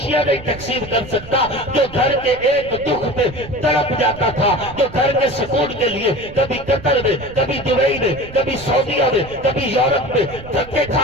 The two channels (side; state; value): right; noise; rumble, 16 dB below the sound